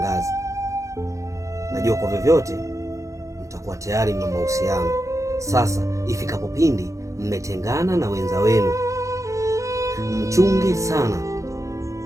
najua kwa vyovyote mtakuwa tayari mna mahusiano. Sasa ifikapo pindi mmetengana na wenza wenu, mchunge sana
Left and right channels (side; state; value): left; late; 0.15 ms